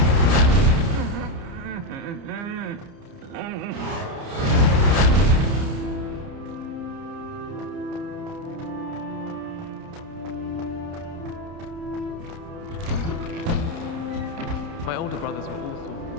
My older brothers were all sorted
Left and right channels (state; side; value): late; left; 30 ms